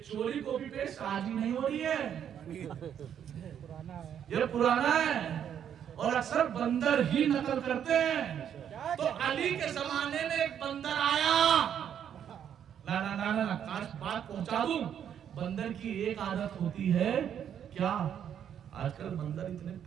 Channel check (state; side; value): quieter; left; 9.1 dB